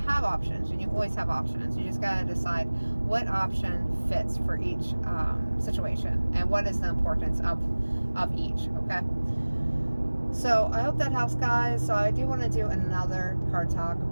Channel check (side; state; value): both; inverted; correlation -1.00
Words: options, and you always have options. You just got to decide what option fits for each situation and what is the importance of each. Okay, so I hope that helps, guys. So I do want to do another card talk